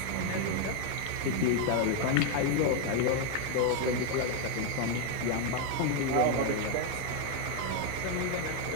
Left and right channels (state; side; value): different; both; correlation 0.01